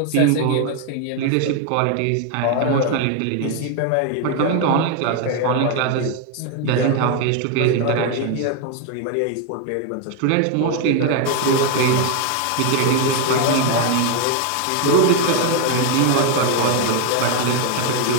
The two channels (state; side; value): different; both; correlation 0.01